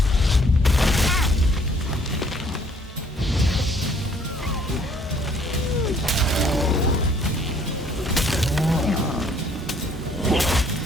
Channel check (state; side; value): normal; both; correlation 0.62